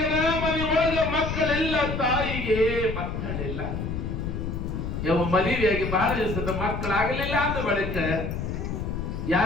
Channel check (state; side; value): noise; left; rumble, 4 dB below the sound